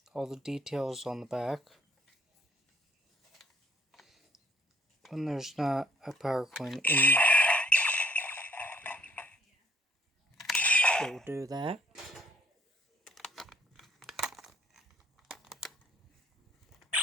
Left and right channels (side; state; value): both; normal; correlation 0.63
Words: All the details on the back. When there's not a power coin in, it will do that.